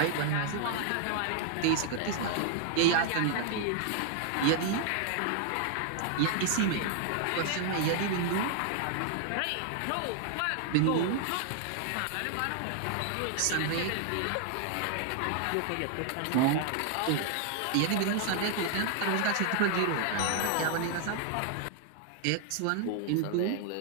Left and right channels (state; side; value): different; both; correlation 0.00